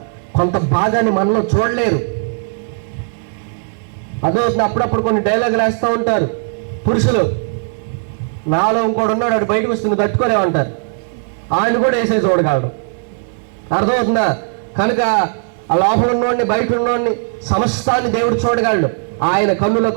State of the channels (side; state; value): left; silent; digital silence